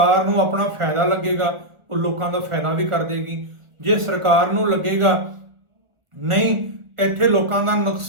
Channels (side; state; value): left; late; 1.4 ms